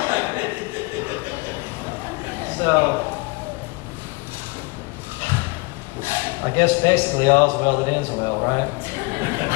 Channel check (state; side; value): quieter; right; 27.0 dB